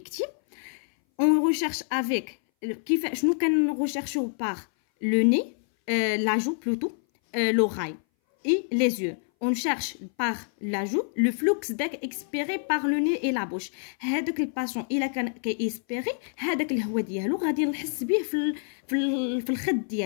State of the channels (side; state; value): right; silent; 59 dB below the other